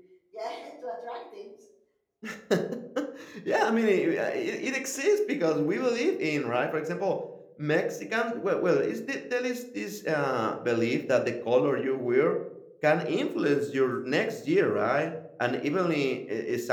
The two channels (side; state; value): both; identical; correlation 1.00